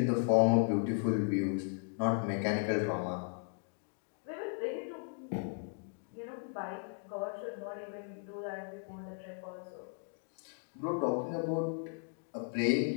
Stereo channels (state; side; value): silent; right; 54 dB below the other